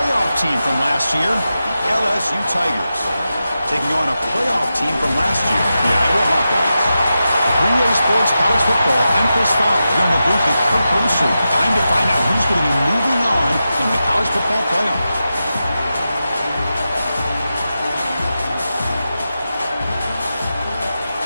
team from last year, the LSU Tigers, taking on a playoff team from last year, the Iowa Hawkeyes. Three-Way Sports College Football, I'm Chris Fowler. Here in the booth with Kirk Brewster. Time to find out who's going to be moving on in the college football playoff.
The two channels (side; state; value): both; inverted; correlation -0.91